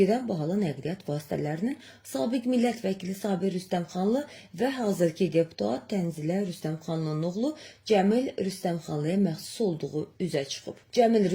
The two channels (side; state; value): both; identical; correlation 1.00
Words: bahalı nəqliyyat vasitələrinin sabiq millət vəkili Sabir Rüstəmxanlı və hazırki deputat Tənzilə Rüstəmxanlının oğlu Cəmil Rüstəmxanlıya məxsus olduğu üzə çıxıb. Cəmil